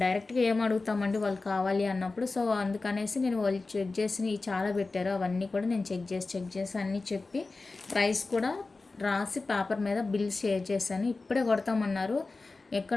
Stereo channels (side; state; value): right; quieter; 3.6 dB